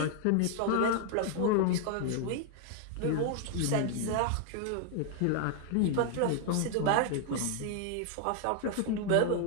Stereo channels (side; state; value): both; different; correlation 0.00